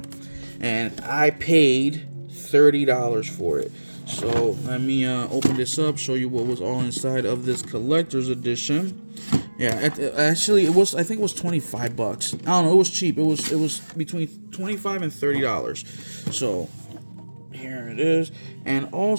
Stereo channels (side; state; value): both; inverted; correlation -1.00